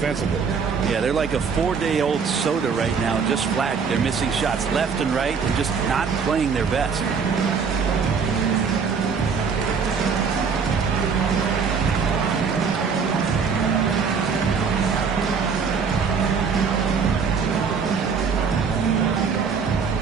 Yeah, they're like a 4-day-old soda right now, just flat. They're missing shots left and right and just not playing their best.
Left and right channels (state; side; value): quieter; left; 5.8 dB